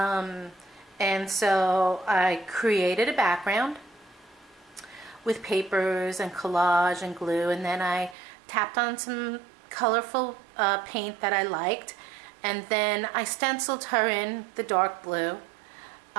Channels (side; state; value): left; drops out; at 8.2 s